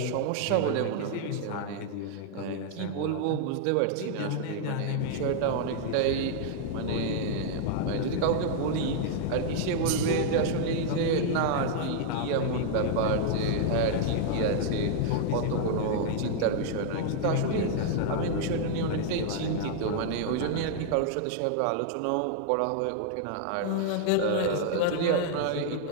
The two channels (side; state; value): both; different; correlation -0.01